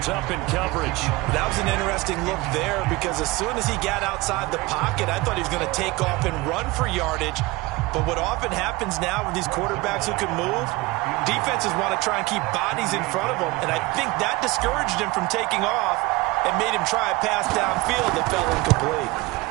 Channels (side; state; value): left; quieter; 22.2 dB